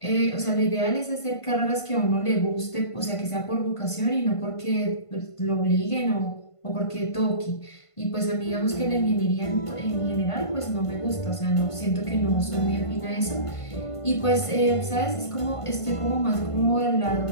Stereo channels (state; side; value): late; right; 1.5 ms